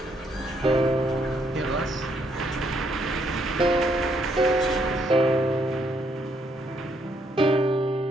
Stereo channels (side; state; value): both; normal; correlation 0.72